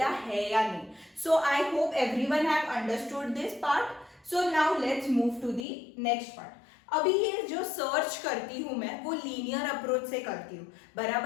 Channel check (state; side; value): drops out; right; at 5.7 s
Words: है या नहीं. So I hope everyone have understood this part. So now let's move to the next part. अभी ये जो सर्च करती हूं मैं वो लीनियर अप्रोच से करती हूँ,